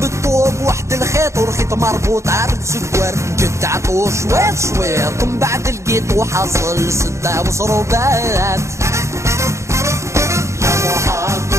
الطوب واحد الخيط والخيط مربوط عرض سكوار جد عطو شويط شويط من بعد لقيت وحصل ستة وصروبات يا محمد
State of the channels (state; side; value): late; left; 0.14 ms